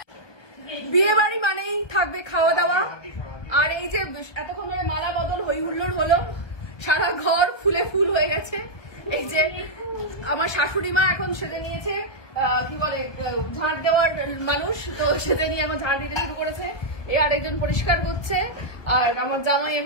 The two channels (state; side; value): late; right; 1.2 ms